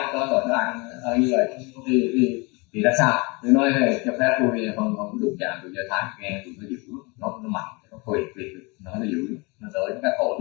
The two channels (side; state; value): right; quieter; 28.0 dB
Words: có tội ăn như vậy thì là sao? Tôi nói cho phép tôi không đụng chạm từ Do Thái, nghe tụi nó dữ, nó mạnh, nó quyền nó dữ, nó tới các cổ